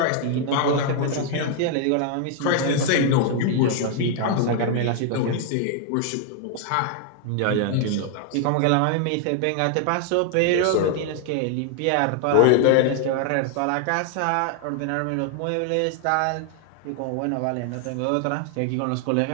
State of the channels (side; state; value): both; different; correlation 0.00